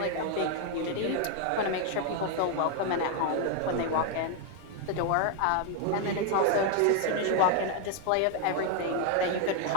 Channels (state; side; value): different; both; correlation 0.00